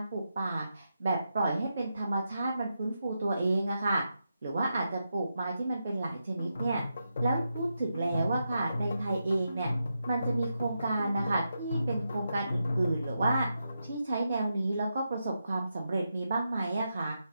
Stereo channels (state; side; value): inverted; both; correlation -0.86